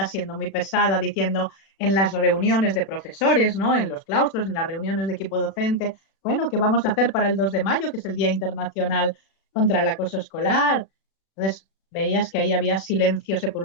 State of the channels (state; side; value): late; right; 36 ms